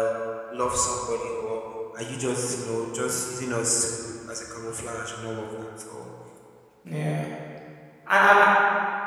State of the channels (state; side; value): identical; both; correlation 1.00